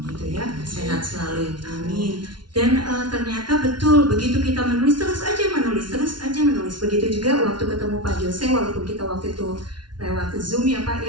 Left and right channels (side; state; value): left; late; 0.71 ms